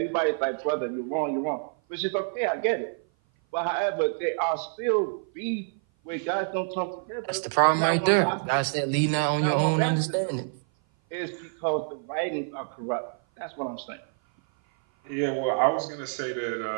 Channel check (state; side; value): silent; left; 56 dB below the other